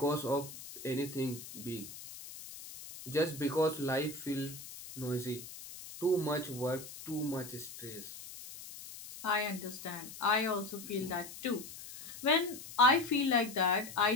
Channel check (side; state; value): left; noise; hiss, 13 dB below the sound